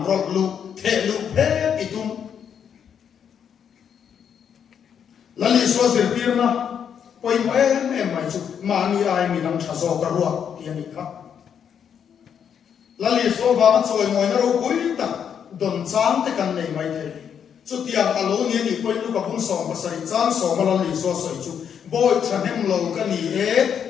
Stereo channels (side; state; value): right; quieter; 8.0 dB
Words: rọt lụ thể lụ phép itum là lý số diệt tiền na quay mà em mày chú mà ni ai mi đang trả gió cả ruột tiền đi khác là lý số vàng chơi ngồi nó đâu cuối ta đồn chán thế cần này mày thế chú tiền alo ni ni quay lúc gặp hung sòng và sợi chán sòng mà là lý số sợi chú boy chân em lâu cái ni